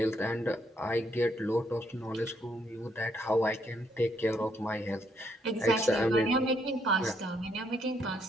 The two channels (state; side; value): normal; both; correlation 0.73